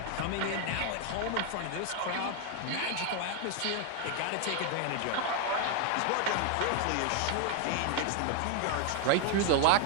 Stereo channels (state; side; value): different; both; correlation 0.01